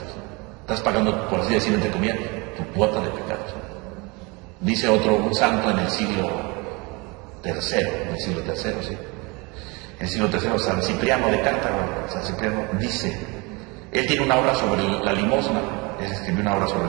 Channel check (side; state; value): left; quieter; 27.1 dB